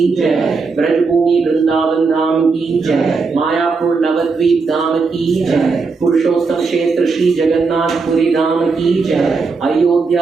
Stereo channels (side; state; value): left; quieter; 4.5 dB